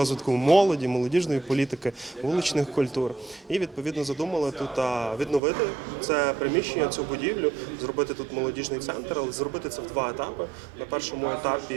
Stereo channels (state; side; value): drops out; left; at 5.4 s